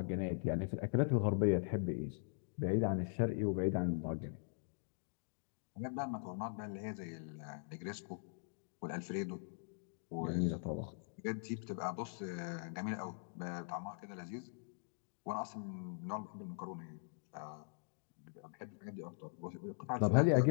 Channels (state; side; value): silent; right; digital silence